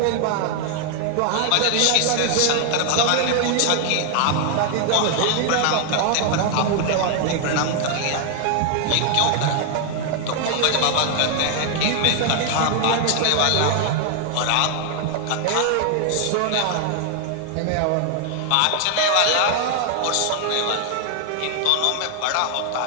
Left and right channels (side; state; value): both; different; correlation 0.00